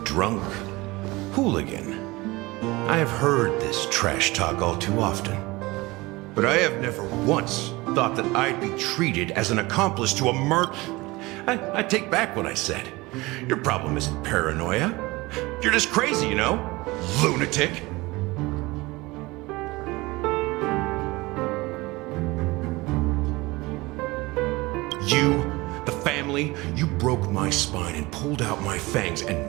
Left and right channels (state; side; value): quieter; left; 21.9 dB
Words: drunk, hooligan. I have heard this trash talk all too often. But I have never once thought that I'd be treated as an accomplice to a murder. I take back what I said. Your problem isn't paranoia. You're just crazy, you know? Lunatic. You, the family, you broke my spine and pulled out my fangs, and